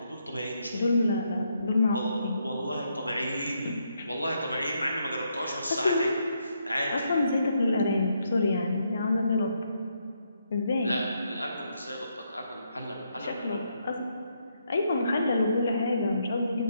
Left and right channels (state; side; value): inverted; both; correlation -0.77